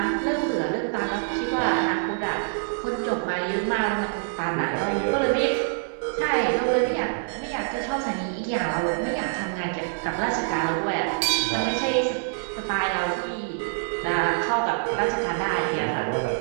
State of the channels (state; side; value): silent; left; 61 dB below the other